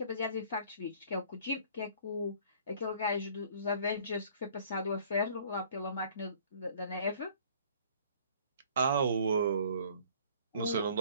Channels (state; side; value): inverted; both; correlation -0.53